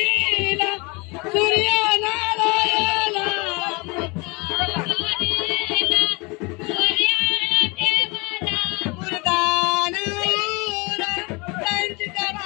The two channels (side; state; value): right; quieter; 27.7 dB